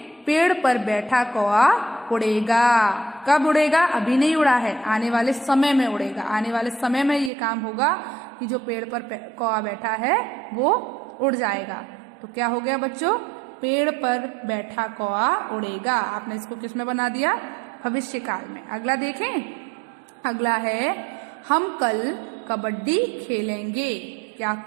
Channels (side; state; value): left; drops out; at 7.3 s